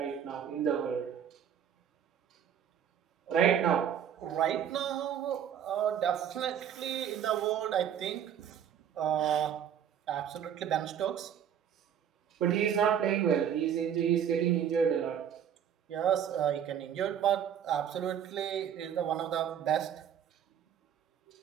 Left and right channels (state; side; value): quieter; left; 9.0 dB